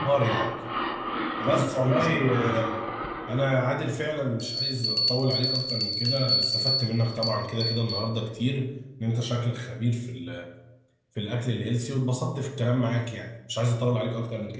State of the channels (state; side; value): identical; both; correlation 1.00